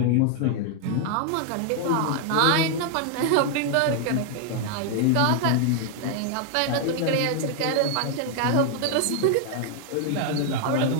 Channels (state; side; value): different; both; correlation 0.00